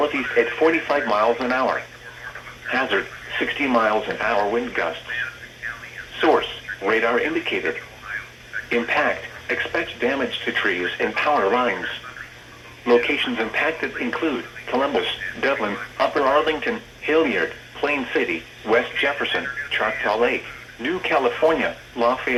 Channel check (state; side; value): identical; both; correlation 1.00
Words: at 45 miles an hour. Hazard, 60 miles an hour wind gusts. Source, radar indicated. Impact, expect damage to trees and power lines. Locations impacted include Columbus, Dublin, Upper Arlington, Hilliard, Plain City, West Jefferson, Choctaw Lake, New California,